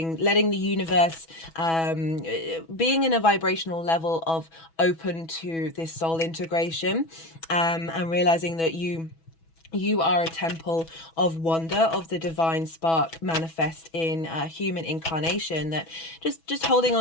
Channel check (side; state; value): right; late; 6.1 ms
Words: the universe, being in a vibrational level of open to this soul integration, and realizing that you are a temple of wonder, of the divine spark manifest in human incarnation, that just holding